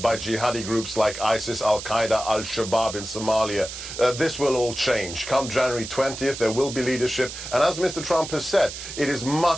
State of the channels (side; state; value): right; noise; hiss, 9 dB below the sound